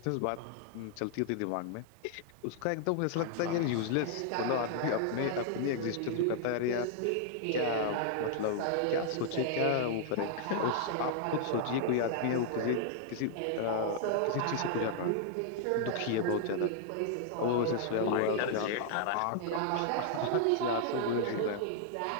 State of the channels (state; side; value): different; both; correlation -0.01